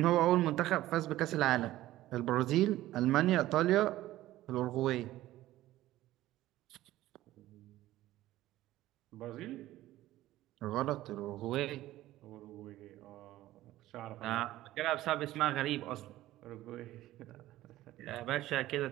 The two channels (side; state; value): left; quieter; 15.4 dB